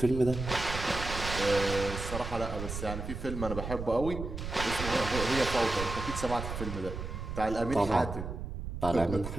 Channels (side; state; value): right; noise; rumble, 6 dB below the sound